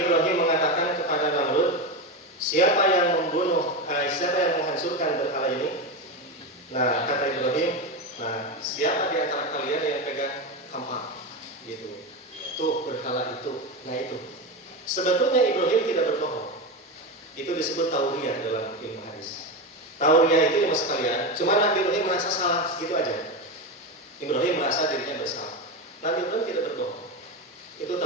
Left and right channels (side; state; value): both; normal; correlation 0.17